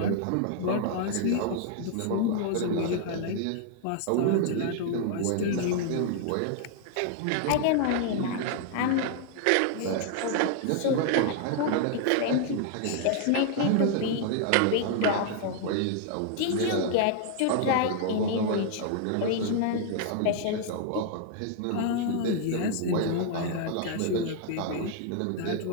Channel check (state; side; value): different; both; correlation 0.00